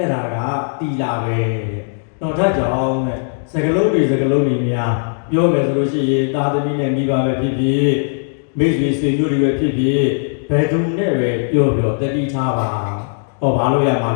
ဲ့ဒါကတီလာပဲတော့ဒါကြောင့်နဲ့စကလုံးတွေများပြောမယ်ဆိုလို့ရှိရင်သာသမီနဲ့မိဘပဲဖြစ်ဖြစ်မိတ်ဆွေဆွေမျိုးတွေပဲဖြစ်ဖြစ်ဘယ်သူနဲ့ပဲပြောတတိထားပါဘာလို့ရမှာ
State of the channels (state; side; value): silent; right; digital silence